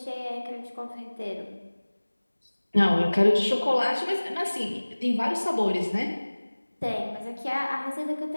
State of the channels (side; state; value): both; inverted; correlation -1.00